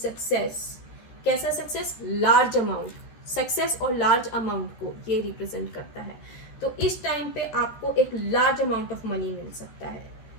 कैसा सक्सेस, लार्ज अमाउंट, सक्सेस और लार्ज अमाउंट को ये रिप्रेजेंट करता है। तो इस टाइम पे आपको एक लार्ज अमाउंट ऑफ मनी मिल सकता है,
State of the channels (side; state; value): right; late; 13 ms